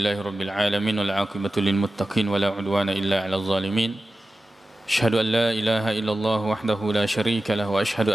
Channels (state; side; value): normal; both; correlation 0.94